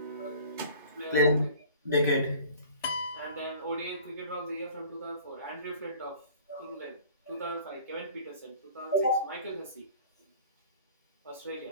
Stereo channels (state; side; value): inverted; both; correlation -0.47